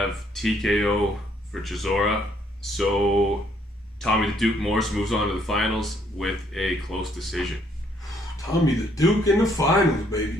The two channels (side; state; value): both; normal; correlation 0.68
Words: TKO for Chisora. So Tommy the Duke Morrison moves on to the finals with a close decision. Tommy the Duke in the finals, baby.